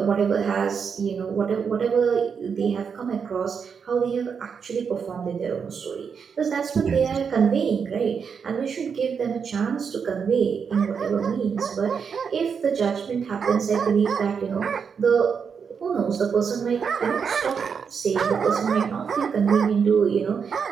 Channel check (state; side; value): quieter; left; 6.4 dB